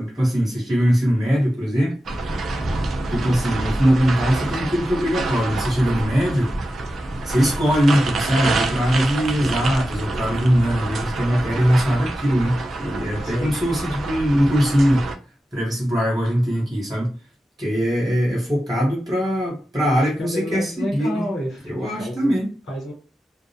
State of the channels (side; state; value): both; normal; correlation 0.92